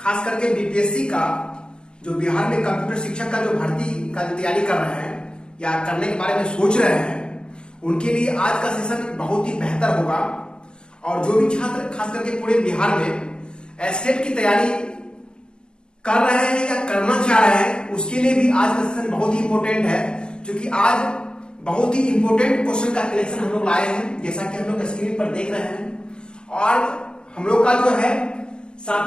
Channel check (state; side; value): late; right; 0.050 ms